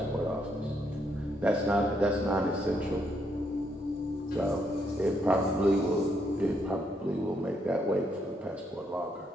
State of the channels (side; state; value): both; normal; correlation 0.75